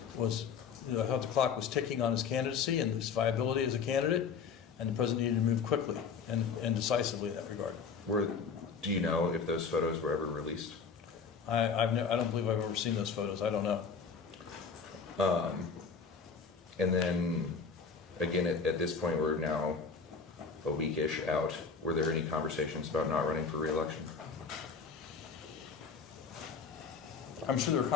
thought the clock was ticking on his candidacy and his viability as a candidate, and the president needed to move quickly and decisively in that regard. Do you know if those photos were ever released? I don't believe I've ever seen those photos. I don't know. And then, again, at this point, we're now a week-ish out. Were there any conversations about not running for re-election? I'm sure there were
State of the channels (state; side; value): quieter; right; 5.7 dB